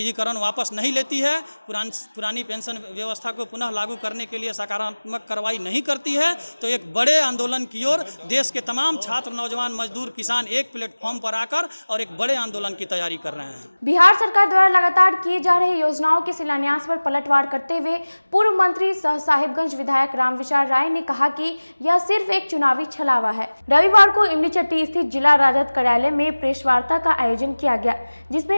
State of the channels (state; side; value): inverted; both; correlation -1.00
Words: वापस नहीं लेती है, पुरानी पेंशन व्यवस्था को पुनः लागू करने के लिए सकारात्मक कार्रवाई नहीं करती है, तो एक बड़े आंदोलन की ओर देश के तमाम छात्र, नौजवान, मजदूर, किसान एक प्लेटफॉर्म पर आकर और एक बड़े आंदोलन की तैयारी कर रहे हैं। बिहार सरकार द्वारा लगातार किए जा रहे योजनाओं के शिलान्यास पर पलटवार करते हुए पूर्व मंत्री सह साहिबगंज विधायक रामविचार राय ने कहा कि यह सिर्फ एक चुनावी छलावा है। रविवार को इमलीचट्टी स्थित जिला राजद कार्यालय में प्रेस वार्ता का आयोजन किया गया,